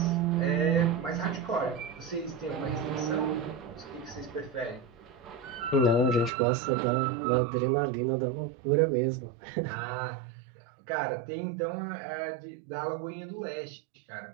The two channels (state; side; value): drops out; left; at 6.3 s